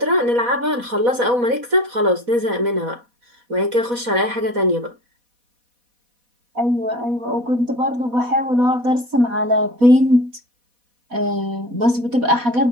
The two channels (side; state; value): left; late; 4.1 ms